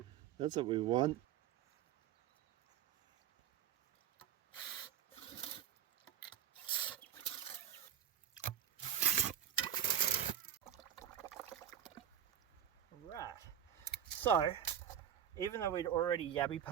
That's what we want. Right. So, even though we'd already yabby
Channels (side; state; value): left; quieter; 10.1 dB